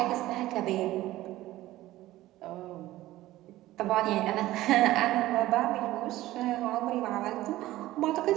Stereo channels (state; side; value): quieter; left; 16.0 dB